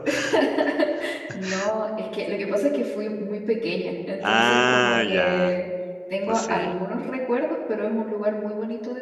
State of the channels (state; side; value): identical; both; correlation 1.00